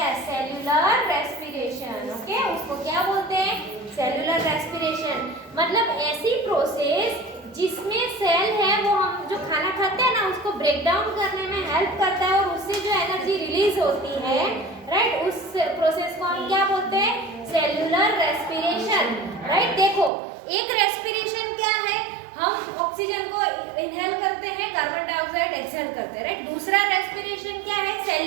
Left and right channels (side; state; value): left; drops out; at 20.1 s